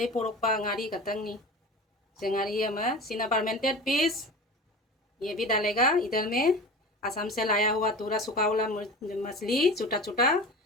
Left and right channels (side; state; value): both; normal; correlation 0.34